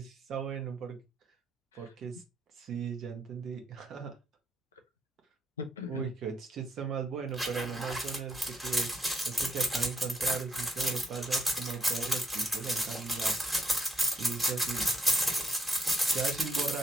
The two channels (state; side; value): normal; both; correlation 0.75